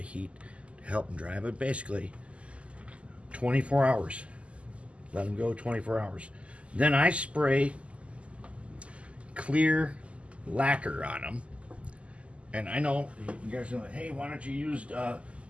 heat to help them dry. But basically, 24 hours. Let them go 24 hours. Then I spray clear lacquer on them. And I know you guys are like, hey, why don't you use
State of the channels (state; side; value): late; left; 0.059 ms